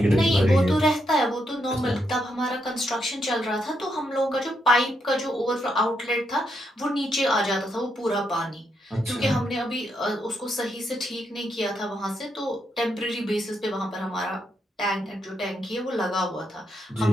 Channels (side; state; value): both; normal; correlation 0.80